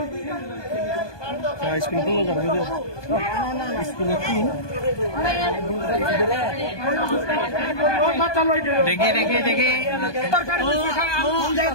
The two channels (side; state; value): right; late; 1.2 ms